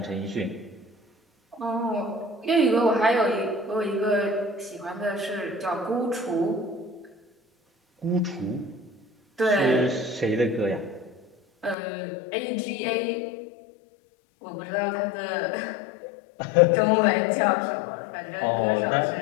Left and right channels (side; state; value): right; drops out; at 11.8 s